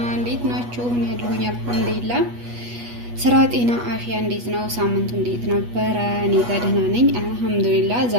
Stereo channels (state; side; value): late; left; 8.3 ms